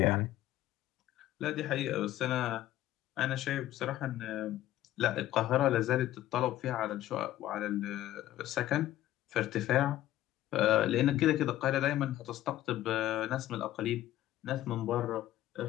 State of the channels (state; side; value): quieter; right; 14.0 dB